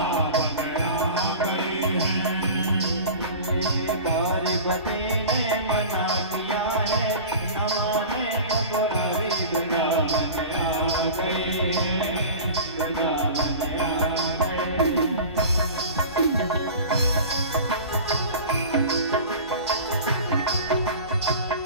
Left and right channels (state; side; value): inverted; both; correlation -0.37